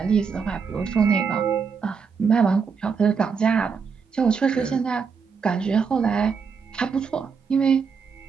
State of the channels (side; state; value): left; quieter; 5.8 dB